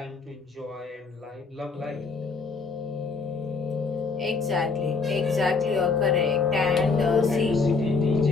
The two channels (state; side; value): quieter; right; 4.5 dB